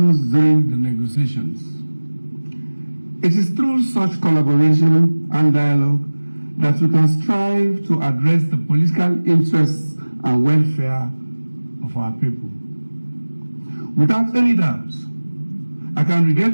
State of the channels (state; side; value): inverted; both; correlation -1.00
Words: during the negotiations. It is through such collaboration and dialogue that we can strive to address the political interests and welfare of our people. Without any doubt, I can